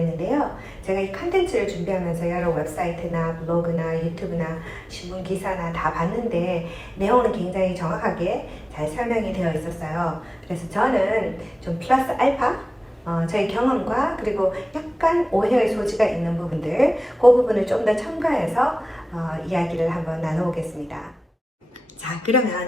제가 이 컨텐츠를 준비하면서 여러 웹사이트나 블로그나 유튜브나 신문 기사나 다 봤는데 내용은 굉장히 정확하게 잘 설명이 되어 있었어요. 그래서 저는 좀 플러스 알파 저희 경험과 그리고 약간 오해의 소지가 있는 부분들, 그 부분을 좀 더 첨가해서 이야기를 한번 나눠보겠습니다. 자,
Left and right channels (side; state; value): both; normal; correlation 0.97